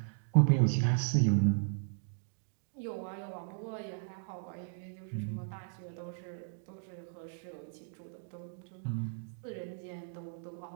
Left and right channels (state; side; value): silent; left; digital silence